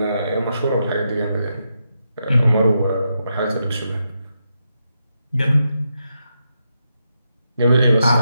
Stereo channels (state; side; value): inverted; both; correlation -0.84